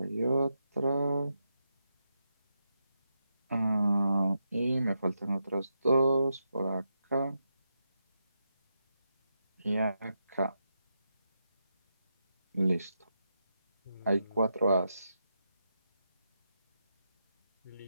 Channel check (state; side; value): inverted; both; correlation -0.85